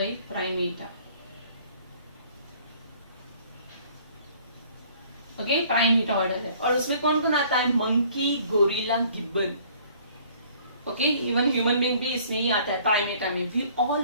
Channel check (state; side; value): inverted; both; correlation -0.56